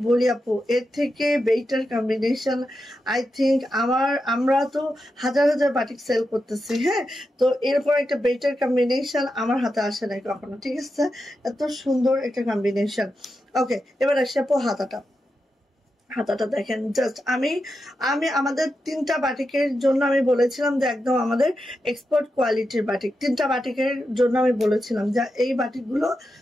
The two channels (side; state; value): both; normal; correlation 0.88